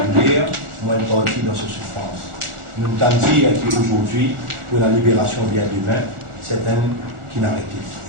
moins une partie dans sa souffrance. Nous entendons dire qu'aujourd'hui, pour la libération vient demain, c'est un qui n'a arrêté.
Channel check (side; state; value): left; late; 1.4 ms